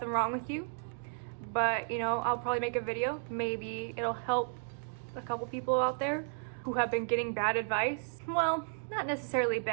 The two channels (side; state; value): left; silent; digital silence